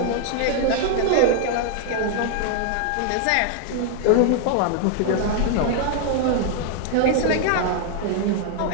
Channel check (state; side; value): different; both; correlation 0.00